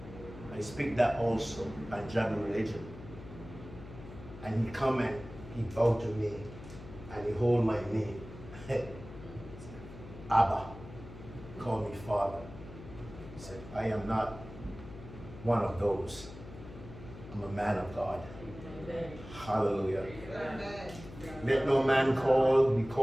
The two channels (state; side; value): noise; left; hum, 14 dB below the sound